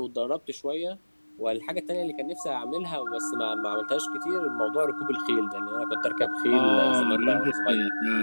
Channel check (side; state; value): both; inverted; correlation -1.00